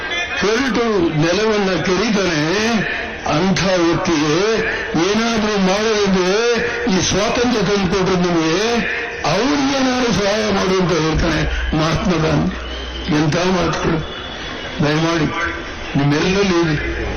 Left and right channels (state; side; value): identical; both; correlation 1.00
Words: ಕೆರಟು ನೆಲವನ್ನ ಕೆರೀತಾನೆ, ಅಂಥ ವ್ಯಕ್ತಿಗೆ ಏನಾದರೂ ಮಾಡೋದಿದ್ರೆ ಈ ಸ್ವಾತಂತ್ರ್ಯ ತಂದುಕೊಟ್ರೆ ನಿಮಗೆ ಅವ್ರಿಗೇನಾದ್ರು ಸಹಾಯ ಮಾಡುವಂತ ಹೇಳ್ತಾನೆ ಮಹಾತ್ಮ ಗಾಂಧಿ. ಎಂಥ ಮಾತುಗಳು! ದಯಮಾಡಿ ನಿಮ್ಮೆಲ್ಲರಲ್ಲಿ